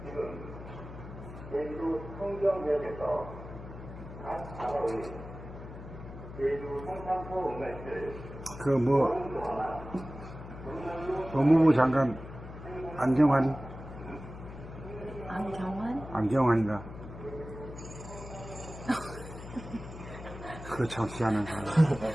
제주 성경역에서 각 단어의 제주 성산포 응할들 법무부 장관 안정환? 안경환인가? 그거 참 희한한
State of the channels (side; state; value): left; noise; hum, 12 dB below the sound